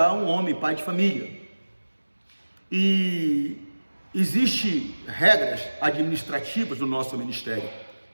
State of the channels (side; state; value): both; inverted; correlation -1.00